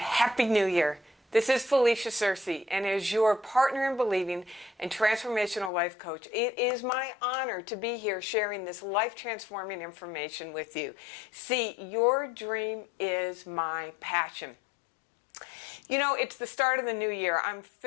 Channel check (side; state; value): right; drops out; at 5.7 s